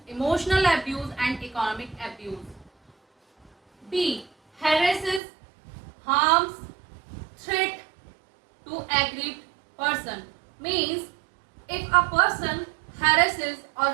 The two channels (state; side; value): drops out; left; at 5.2 s